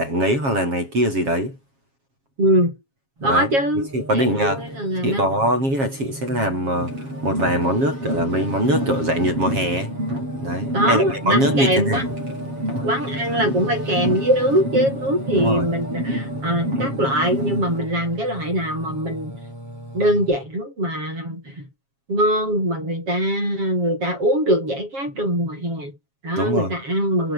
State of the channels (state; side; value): late; left; 7.3 ms